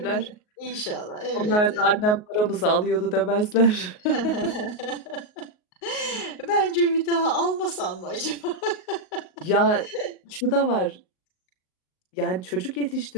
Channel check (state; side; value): late; right; 38 ms